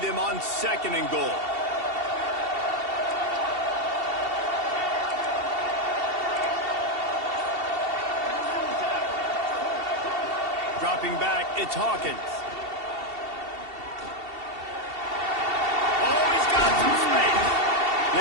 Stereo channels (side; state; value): left; late; 2.7 ms